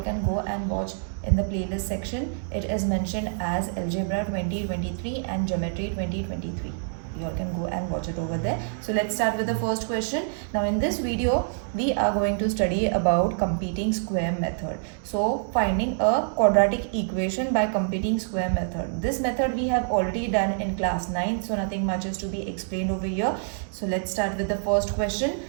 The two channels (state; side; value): silent; left; digital silence